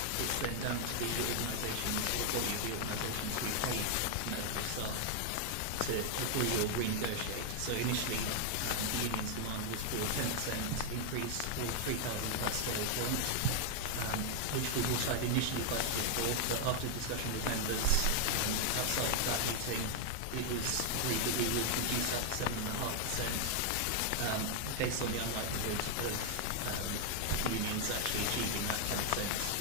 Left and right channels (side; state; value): both; different; correlation 0.00